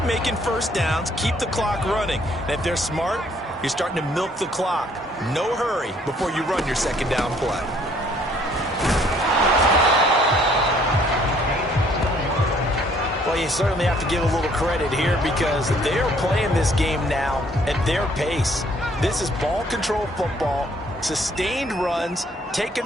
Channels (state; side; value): normal; both; correlation 0.62